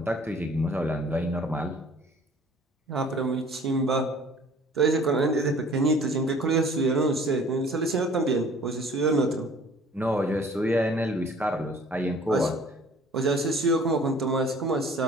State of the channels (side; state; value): both; normal; correlation 0.51